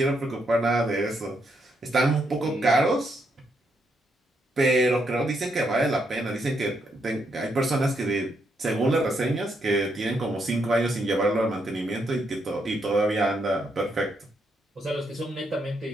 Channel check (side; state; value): both; normal; correlation 0.77